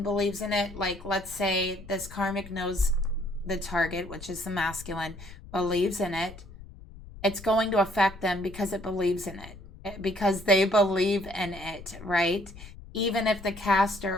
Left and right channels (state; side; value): noise; left; rumble, 17 dB below the sound